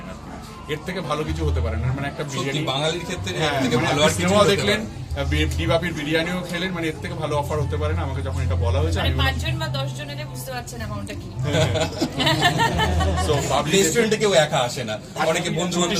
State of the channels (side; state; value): both; identical; correlation 1.00